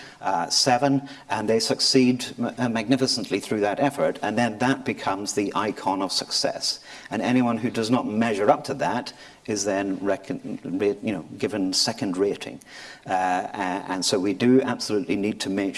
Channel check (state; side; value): identical; both; correlation 1.00